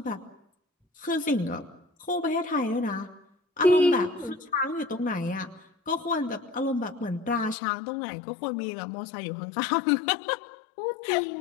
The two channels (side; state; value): right; drops out; at 7.6 s